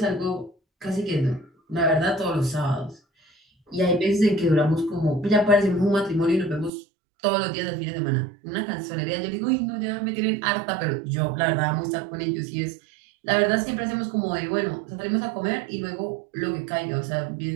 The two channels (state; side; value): drops out; left; at 6.7 s